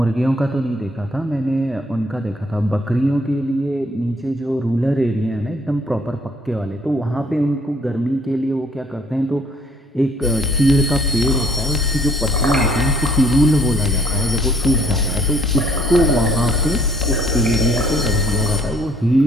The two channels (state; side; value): normal; both; correlation 0.61